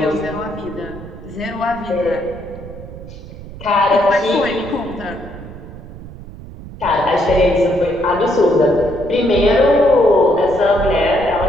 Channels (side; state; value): right; noise; rumble, 14 dB below the sound